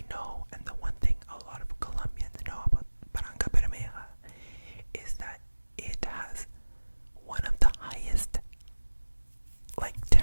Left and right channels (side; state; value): both; inverted; correlation -1.00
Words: know, and the one thing a lot of Colombians know about Barrancabermeja, is that it has one of the highest